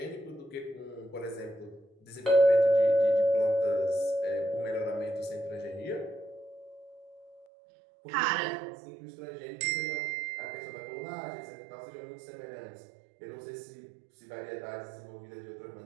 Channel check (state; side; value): drops out; left; at 7.5 s